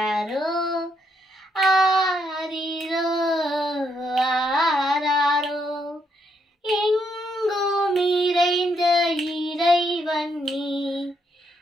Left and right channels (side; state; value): both; normal; correlation 0.76